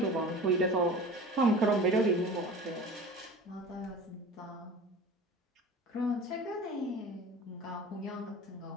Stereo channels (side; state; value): both; normal; correlation 0.38